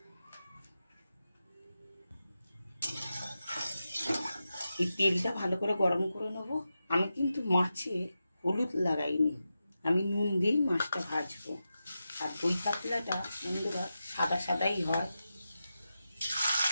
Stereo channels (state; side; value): inverted; both; correlation -0.90